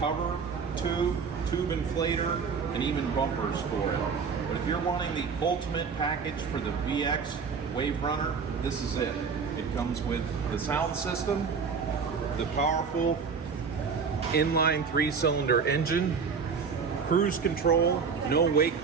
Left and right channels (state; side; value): quieter; left; 5.7 dB